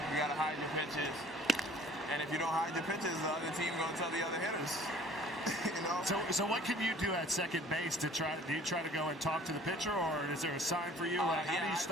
you got to hide your pitches. And if you don't hide your pitches, the other team going to tell the other hitters. You know? So what can you do at second base to try? Do you try to go and talk to the pitcher, or is there a sign for you? How do you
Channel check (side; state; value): both; normal; correlation 0.51